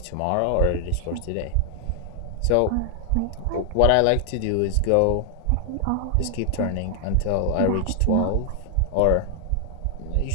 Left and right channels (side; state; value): both; different; correlation 0.00